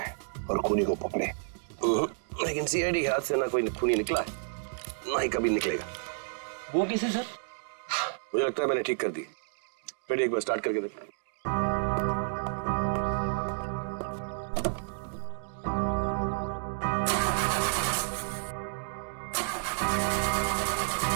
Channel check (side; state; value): left; silent; digital silence